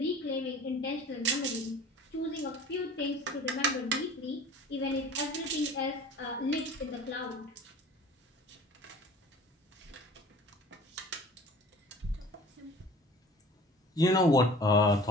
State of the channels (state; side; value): normal; both; correlation 0.44